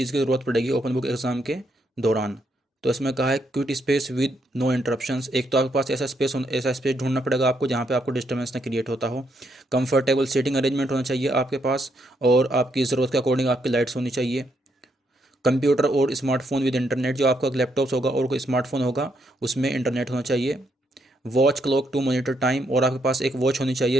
की ज़रूरत पड़ेगी ओपन बुक एग्ज़ाम के दौरान। तो इसमें कहा है quiet space with no interruptions, एक तो आपके पास ऐसा स्पेस ढूंढना पड़ेगा आपको जहाँ पे आपको डिस्टर्बेंस ना क्रिएट होता हो। कंफर्टेबल सीटिंग अरेंजमेंट होना चाहिए आपके पास, और आपकी ज़रूरत के अकॉर्डिंग आपकी लाइट्स होनी चाहिए। कंप्यूटर और स्मार्टफोन विद इंटरनेट, जो आपका लैपटॉप्स होगा और कोई स्मार्टफोन होगा उसमें इंटरनेट होना चाहिए। Watch clock to monitor time, और आपके पास एक वॉच होनी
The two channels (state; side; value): normal; both; correlation 0.76